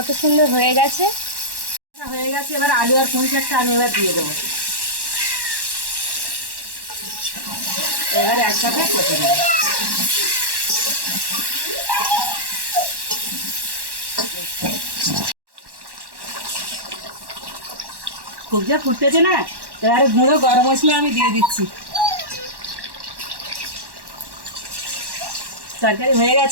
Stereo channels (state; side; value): late; left; 1.1 ms